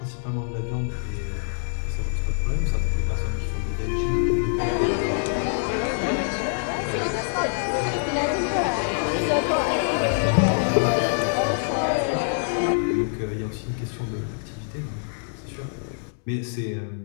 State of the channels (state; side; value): silent; right; 62 dB below the other